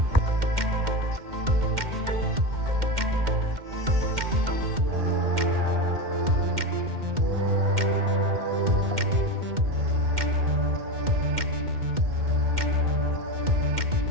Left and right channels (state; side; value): late; left; 2.1 ms